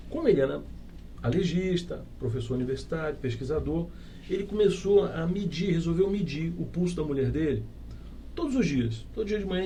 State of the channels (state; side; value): identical; both; correlation 1.00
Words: Como ele era alergista, professor universitário, pesquisador, ele começou a resolveu medir o pulso da mulher dele todos os dias. Todo dia de manhã